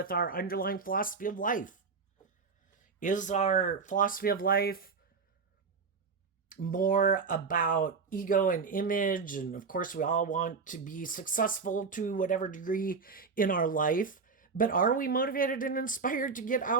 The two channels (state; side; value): quieter; left; 5.0 dB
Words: our underlying philosophy of life. Is our philosophy of life more about ego and image? And of course, we all want to be successful to whatever degree in our life. But are we motivated and inspired to get